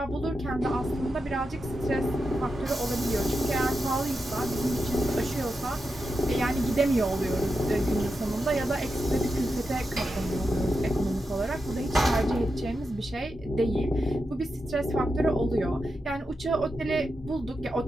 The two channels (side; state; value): both; normal; correlation 0.88